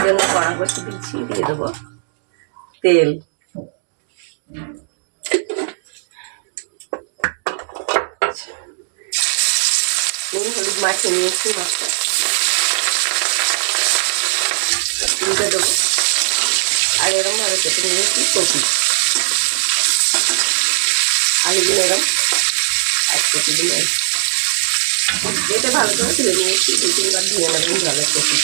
জন্য কড়া বসে দিচ্ছি, দিয়ে দেবো তেল। নুন হলুদ মাখিয়ে নিয়েছি, মাছটা দিয়ে দেবো। আর এরকম ভাবে কেটে নিয়েছি কপি, আলুগুলো এরকম এক কেটে দিলে যেতে ভালো করে ধুয়ে নিয়েছি, 2-3 বার ধুয়ে নেবেন জলের কপি।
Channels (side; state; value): left; silent; digital silence